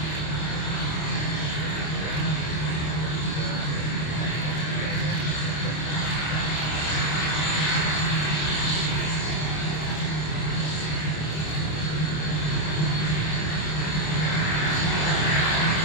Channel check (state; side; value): late; right; 26 ms